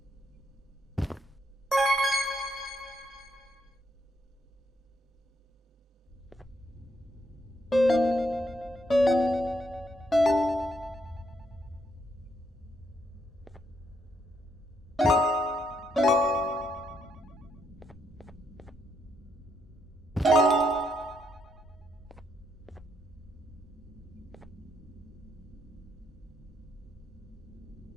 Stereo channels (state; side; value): normal; both; correlation 0.76